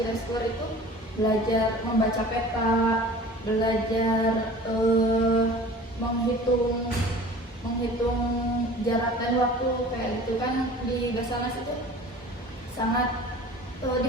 Reskor itu belajar membaca peta, belajar menghitung jarak dan waktu kayak gitu kan di Basarnas itu sangat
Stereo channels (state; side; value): normal; both; correlation 0.43